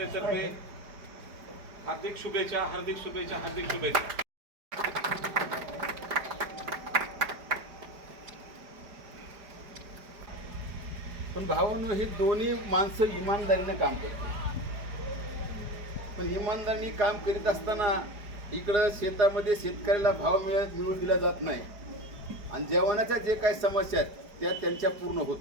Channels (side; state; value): left; late; 4.9 ms